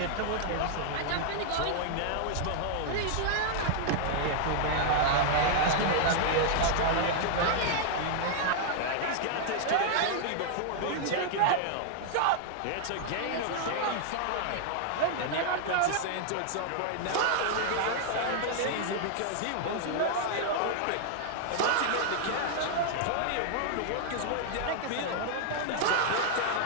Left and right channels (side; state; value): both; different; correlation -0.01